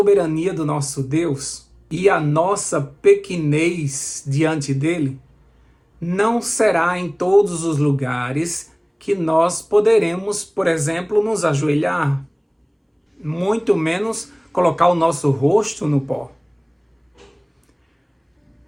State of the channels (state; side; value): identical; both; correlation 1.00